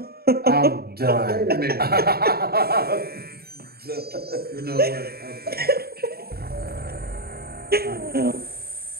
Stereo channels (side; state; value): left; late; 0.45 ms